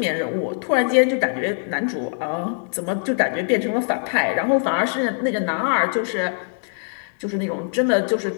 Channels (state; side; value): silent; right; 60 dB below the other